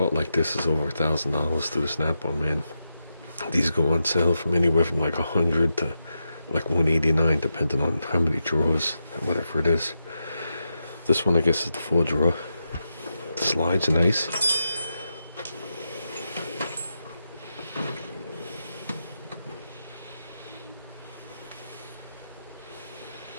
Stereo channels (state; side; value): inverted; both; correlation -0.87